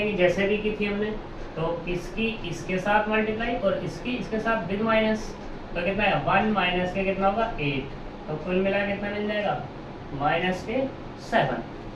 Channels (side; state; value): both; identical; correlation 1.00